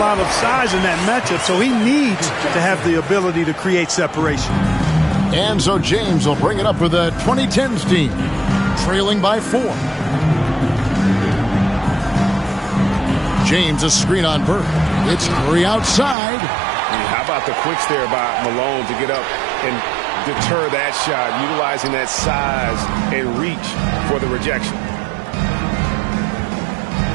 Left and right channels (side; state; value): left; drops out; at 16.2 s